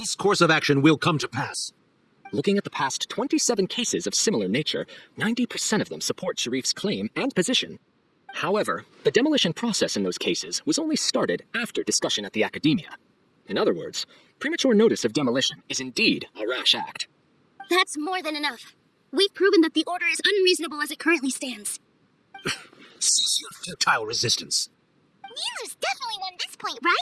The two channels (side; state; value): both; identical; correlation 1.00